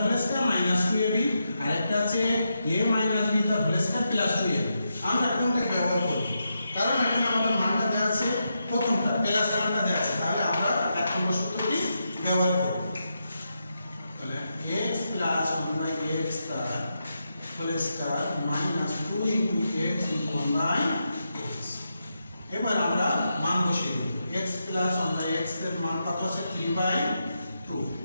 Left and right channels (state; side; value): inverted; both; correlation -0.85